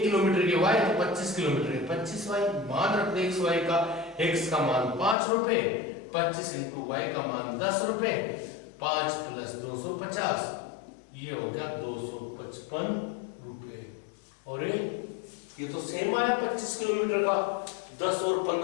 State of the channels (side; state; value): right; drops out; at 5.2 s